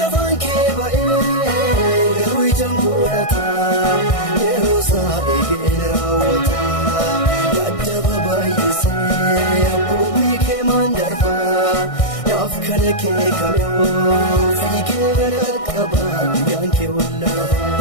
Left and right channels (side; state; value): right; late; 1.6 ms